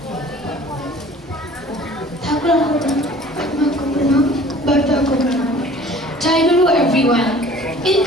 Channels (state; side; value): normal; both; correlation 0.49